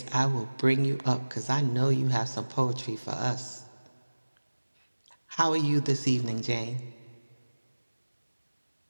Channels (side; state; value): both; inverted; correlation -1.00